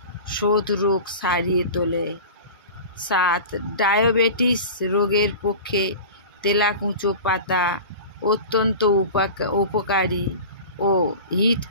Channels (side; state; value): both; inverted; correlation -0.35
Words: শোথ রোগ সারিয়ে তোলে। ৭. ডায়াবেটিস রোগের পক্ষে তেলাকুচো পাতা অত্যন্ত উপকারী ও